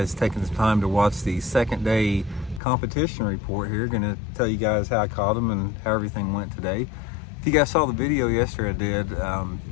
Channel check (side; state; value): right; drops out; at 2.6 s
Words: taking this time to watch the second day competition report here. Going to tell you guys how I caught them and how everything went today. If you guys saw the video yesterday I did,